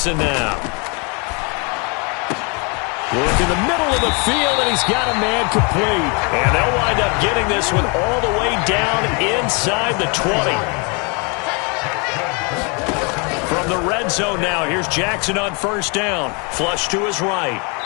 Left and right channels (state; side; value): quieter; right; 33.2 dB